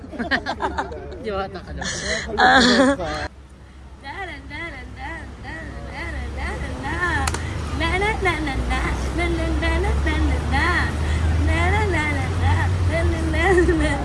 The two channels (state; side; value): identical; both; correlation 1.00